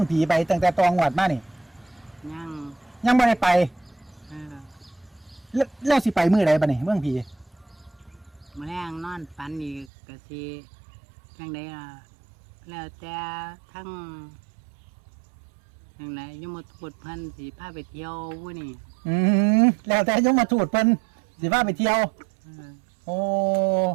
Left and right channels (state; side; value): drops out; left; at 9.9 s